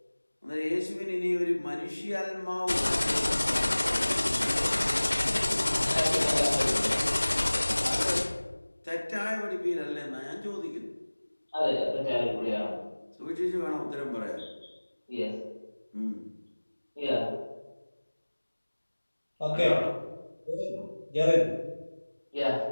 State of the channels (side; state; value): both; inverted; correlation -1.00